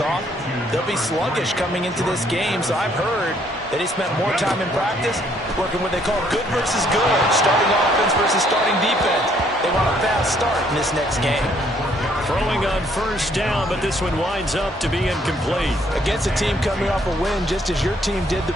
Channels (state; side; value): normal; both; correlation 0.66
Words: they'll be sluggish coming into this game. So I've heard that he spent more time in practice working what they call good versus good, starting offense versus starting defense. They want a fast start in this next game. Throwing on 1st down, but this one winds up to be incomplete. Against a team coming off a win just as your team did the